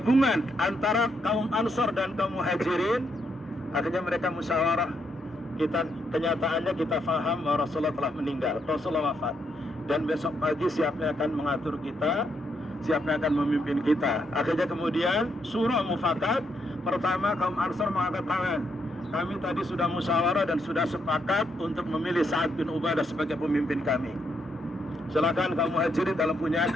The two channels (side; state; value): both; normal; correlation 0.77